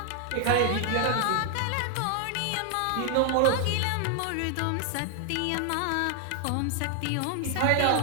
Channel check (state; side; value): different; both; correlation 0.00